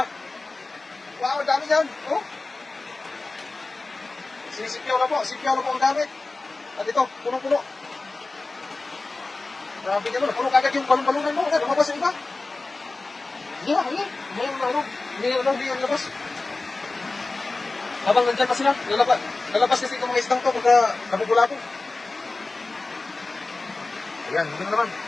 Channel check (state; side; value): quieter; right; 3.4 dB